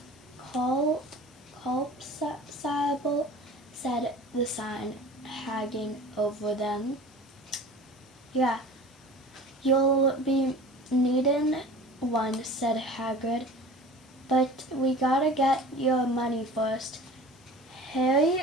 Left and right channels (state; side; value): normal; both; correlation 0.40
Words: Colpsable, said the sign, hanging over them. "Yeah, you'll be needin' one," said Hagrid. "But we gotta get your money first." Harry